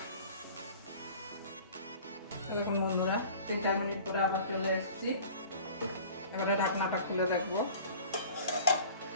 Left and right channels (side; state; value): both; inverted; correlation -0.45